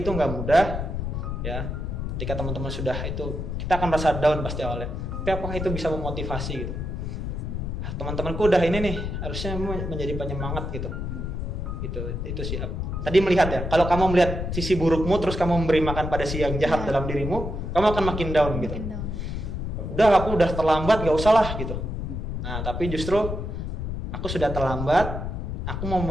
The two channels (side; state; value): left; noise; rumble, 4 dB below the sound